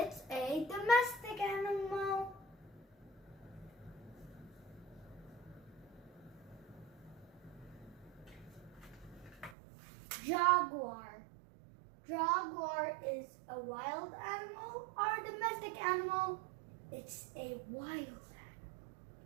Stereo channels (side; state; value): left; drops out; at 9.6 s